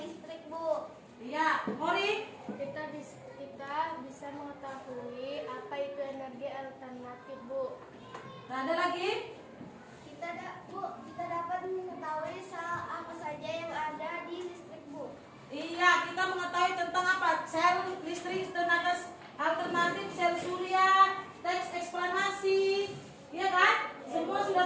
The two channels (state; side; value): identical; both; correlation 1.00